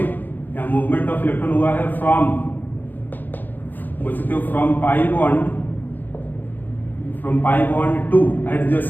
मूवमेंट ऑफ इलेक्ट्रॉन हुआ है फ्रॉम, बोल सकते हो from pi bond two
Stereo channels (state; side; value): late; right; 0.087 ms